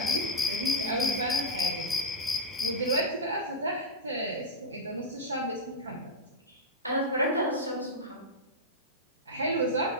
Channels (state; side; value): normal; both; correlation -0.06